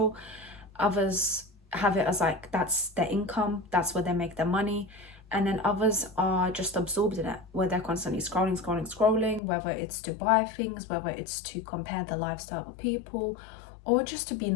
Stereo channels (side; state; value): right; drops out; at 9.4 s